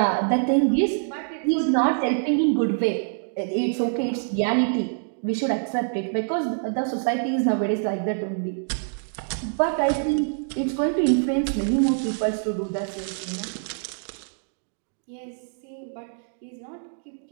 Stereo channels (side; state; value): left; silent; digital silence